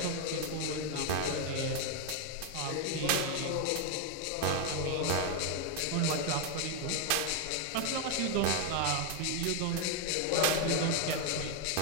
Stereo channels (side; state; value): both; different; correlation 0.01